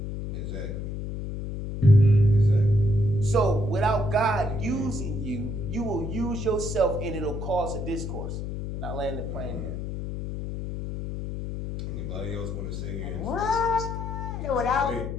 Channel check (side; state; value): left; noise; hum, 5 dB below the sound